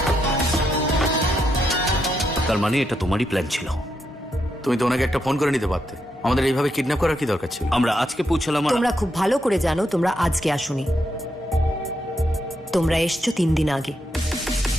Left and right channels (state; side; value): normal; both; correlation 0.81